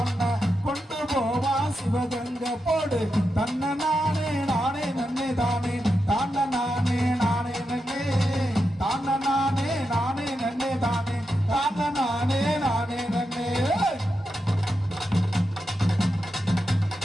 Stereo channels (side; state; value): both; normal; correlation 0.87